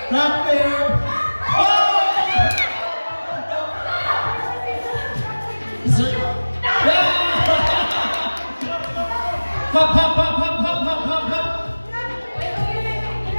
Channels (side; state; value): both; inverted; correlation -1.00